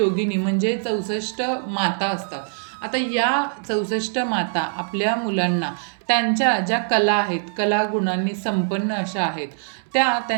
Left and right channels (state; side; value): silent; left; 64 dB below the other